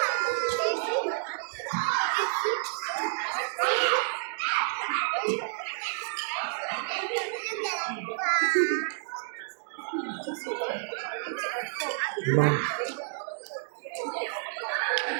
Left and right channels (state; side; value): silent; left; digital silence